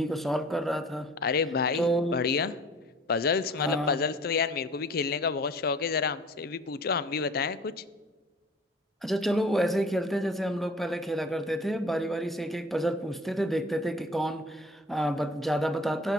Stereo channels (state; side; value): normal; both; correlation 0.47